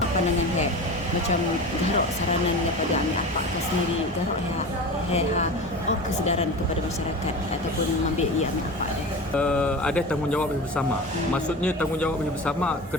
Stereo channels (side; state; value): both; normal; correlation 0.31